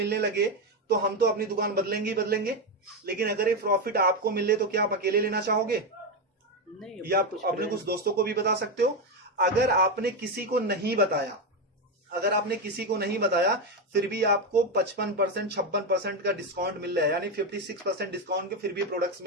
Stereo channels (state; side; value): normal; both; correlation 0.10